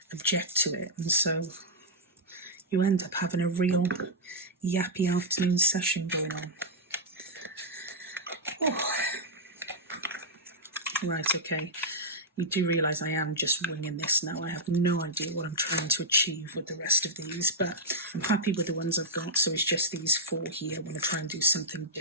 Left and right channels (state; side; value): normal; both; correlation -0.06